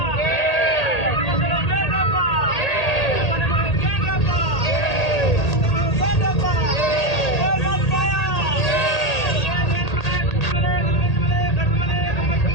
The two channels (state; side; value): late; right; 1.8 ms